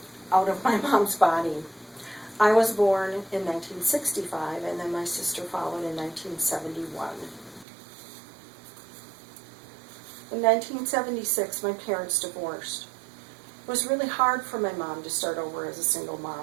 out of my mom's body. I was born in 1965, and then my sister followed in 1971. In 1976, my parents divorced. It was really hard for my mom to start over as a single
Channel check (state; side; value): drops out; left; at 7.7 s